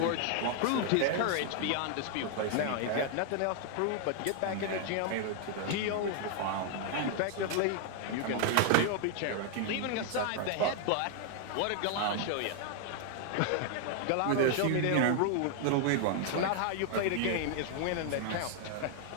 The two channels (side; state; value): both; different; correlation 0.00